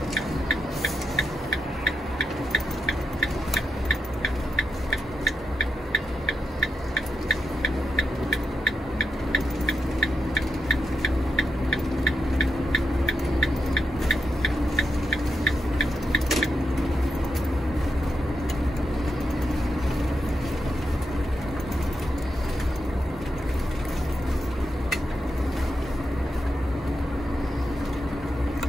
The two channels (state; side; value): normal; both; correlation 0.83